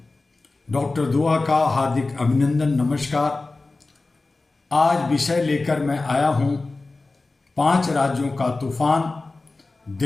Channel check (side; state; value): right; quieter; 3.4 dB